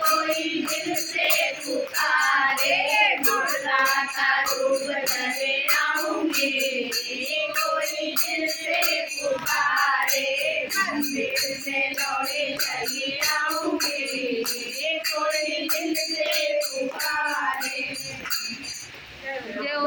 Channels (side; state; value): both; identical; correlation 1.00